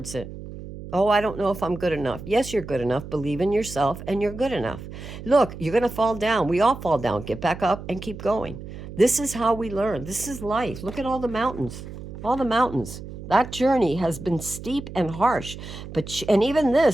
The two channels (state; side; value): noise; right; hum, 12 dB below the sound